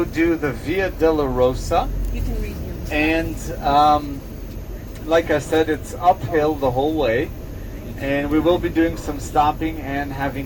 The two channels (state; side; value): identical; both; correlation 1.00